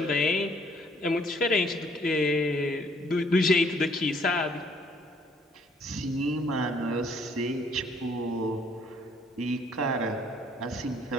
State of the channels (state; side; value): normal; both; correlation 0.64